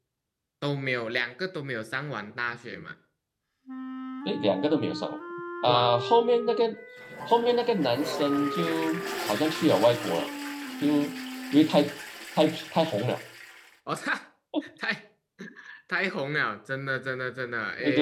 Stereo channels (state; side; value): identical; both; correlation 1.00